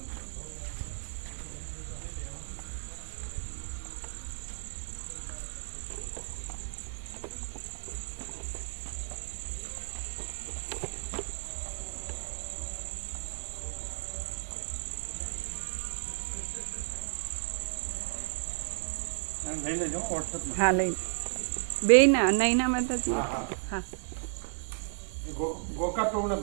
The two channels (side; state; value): left; silent; 55 dB below the other